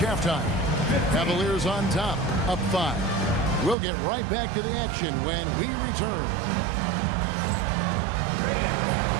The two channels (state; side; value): drops out; left; at 3.8 s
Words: halftime. Cavaliers on top, up 5. We'll get right back to the action when we return.